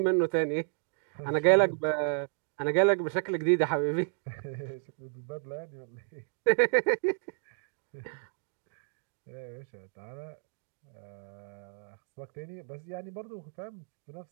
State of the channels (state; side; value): silent; left; digital silence